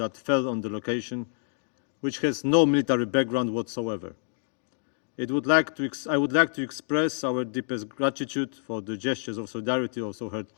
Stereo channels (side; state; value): right; silent; 60 dB below the other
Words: fell on the location, which has no military background whatsoever. I would like to express our deepest gratitude for the gestures of solidarity also heard